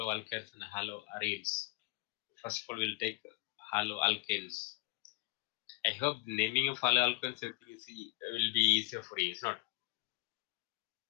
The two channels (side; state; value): right; quieter; 24.3 dB